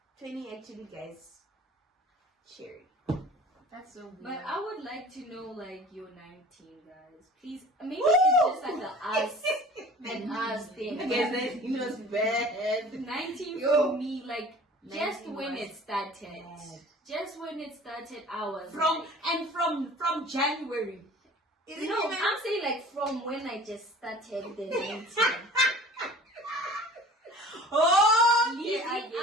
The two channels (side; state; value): both; normal; correlation 0.45